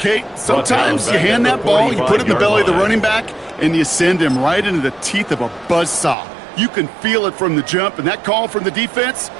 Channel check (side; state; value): left; drops out; at 6.2 s